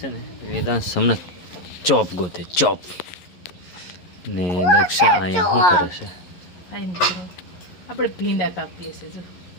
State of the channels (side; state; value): right; late; 11 ms